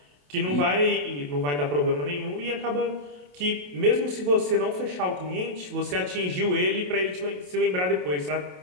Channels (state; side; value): late; left; 28 ms